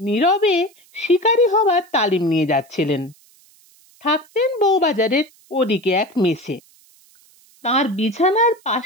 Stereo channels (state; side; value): noise; right; hiss, 30 dB below the sound